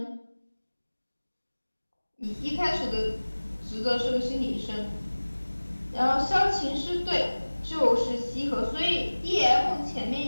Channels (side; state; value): both; inverted; correlation -1.00